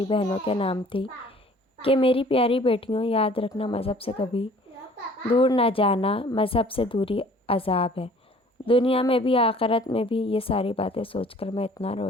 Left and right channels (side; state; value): both; normal; correlation 0.52